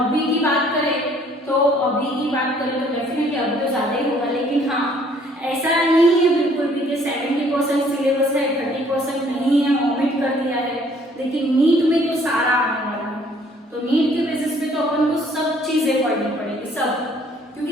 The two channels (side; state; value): both; normal; correlation 0.60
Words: की बात करें तो डेफिनेटली अभी तो ज्यादा ही होगा, लेकिन हाँ ऐसा नहीं है बिल्कुल भी कि 70% सिलेबस है, 30% नहीं है, ओमिट कर दिया है। लेकिन नीट में तो सारा आने वाला है, तो नीट के बेसिस पे तो अपन को सब चीजें पढ़नी पड़ेगी, सब।